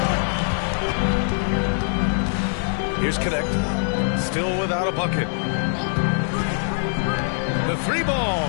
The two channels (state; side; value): silent; right; digital silence